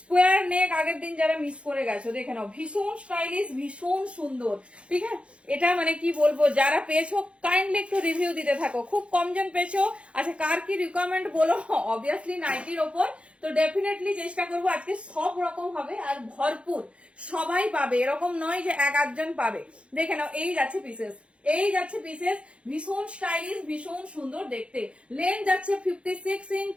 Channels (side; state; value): left; late; 0.060 ms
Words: নেক আগের দিন যারা মিস করে গেছো দেখে নাও, ভীষণ স্টাইলিশ, ভীষণ সুন্দর, ঠিক আছে? এটা মানে কি বলবো, যারা পেয়েছো কাইন্ডলি একটু রিভিউ দিতে থাকো, খুব কমজন পেয়েছো। আচ্ছা কার কি রিকোয়ারমেন্ট বলো, অবভিয়াসলি নাইটির ওপর, তো ডেফিনেটলি চেষ্টা করবো আজকে সব রকম হবে আর ভরপুর, সবাই পাবে, এরকম নয় যে 1-8 জন পাবে। দেখে নাও এই যাচ্ছে পিসেস, এই যাচ্ছে পিসেস, ভীষণ স্টাইলিশ, ভীষণ সুন্দর দেখতে। লেন্থ যাচ্ছে 56 ইঞ্চ,